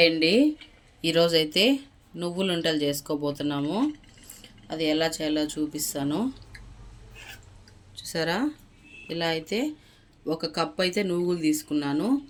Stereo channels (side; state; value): both; identical; correlation 1.00